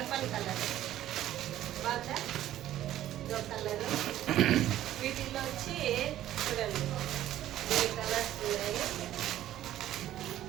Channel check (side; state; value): left; quieter; 13.0 dB